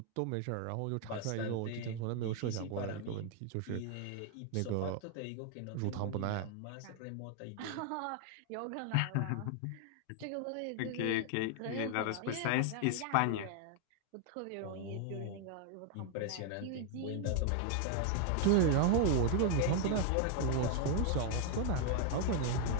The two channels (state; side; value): different; both; correlation 0.00